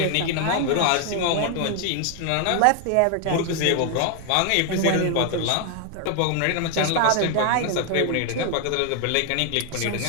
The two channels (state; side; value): different; both; correlation 0.01